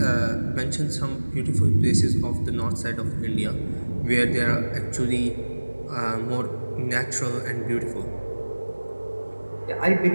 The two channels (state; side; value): inverted; both; correlation -1.00